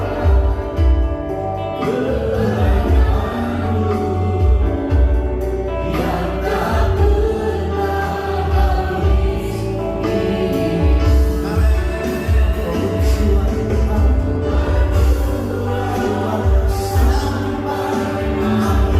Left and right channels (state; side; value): identical; both; correlation 1.00